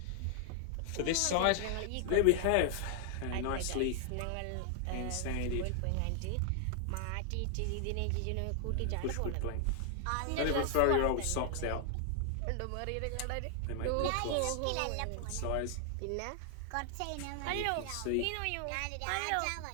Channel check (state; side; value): different; both; correlation 0.00